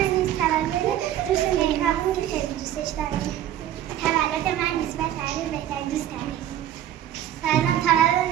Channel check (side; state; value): left; quieter; 11.6 dB